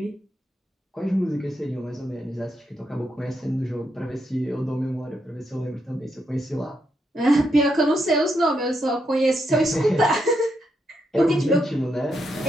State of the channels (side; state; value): both; normal; correlation 0.80